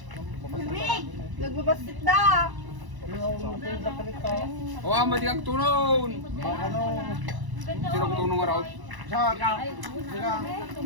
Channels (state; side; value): late; left; 1.0 ms